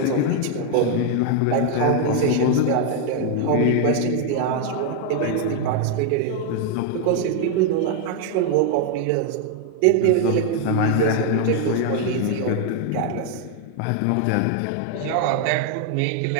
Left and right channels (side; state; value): both; different; correlation 0.00